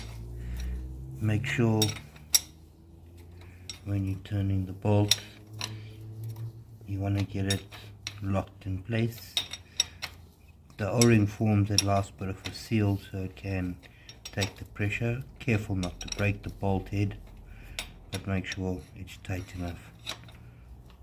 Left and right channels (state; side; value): identical; both; correlation 1.00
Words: make sure when you're turning the bolt, you want to get it locked in place. The O-ring forms a last bit of a seal so it can take the pressure. Careful not to break the bolt head, but make sure it's tight enough.